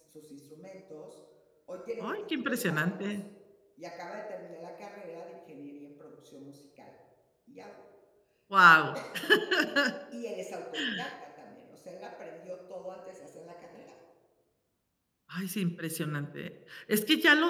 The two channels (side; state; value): both; identical; correlation 1.00